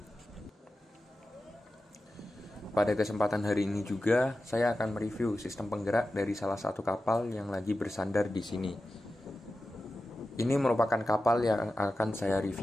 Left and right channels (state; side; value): normal; both; correlation 0.93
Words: Pada kesempatan hari ini juga, saya akan mereview sistem penggerak dari salah satu kapal yang lagi bersandar di sini. Ini merupakan kapal yang akan saya